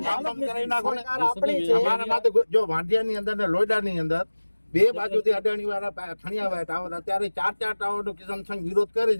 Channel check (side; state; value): both; inverted; correlation -1.00